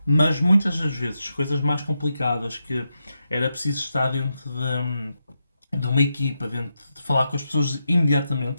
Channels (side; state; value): both; inverted; correlation -0.87